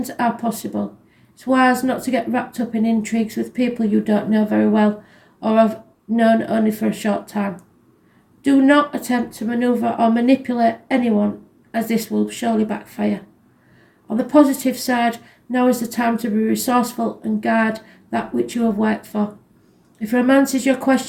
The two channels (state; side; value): identical; both; correlation 1.00